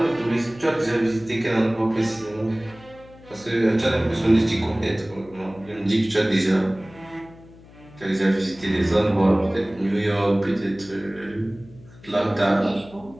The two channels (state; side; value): noise; left; hum, 22 dB below the sound